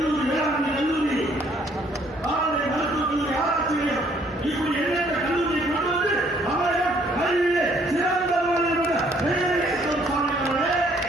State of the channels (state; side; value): normal; both; correlation 0.64